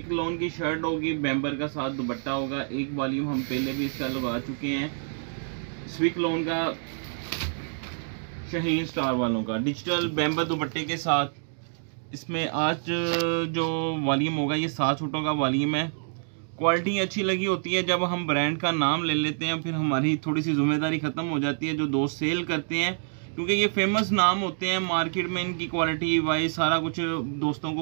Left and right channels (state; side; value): silent; left; digital silence